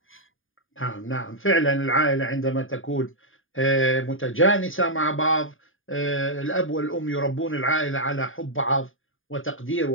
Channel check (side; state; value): right; late; 0.59 ms